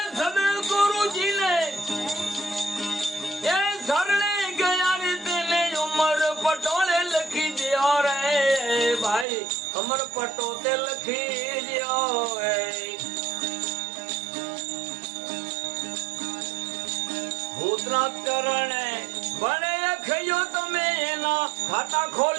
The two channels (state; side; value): drops out; left; at 9.2 s